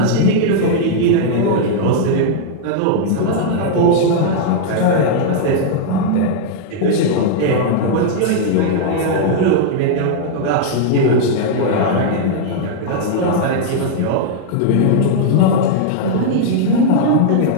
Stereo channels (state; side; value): different; both; correlation -0.01